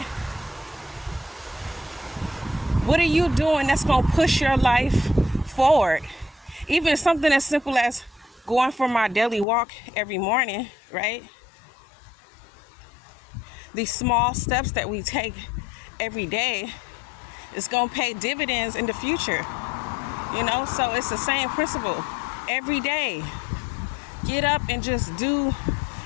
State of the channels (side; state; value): right; drops out; at 9.5 s